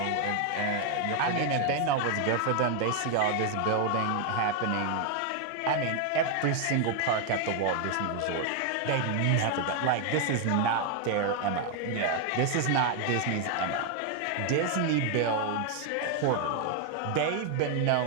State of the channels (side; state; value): both; different; correlation 0.01